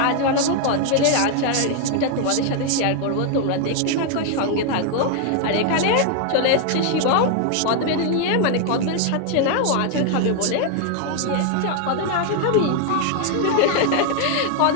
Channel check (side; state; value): both; different; correlation 0.00